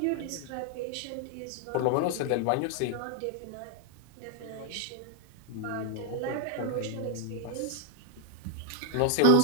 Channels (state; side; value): different; both; correlation 0.01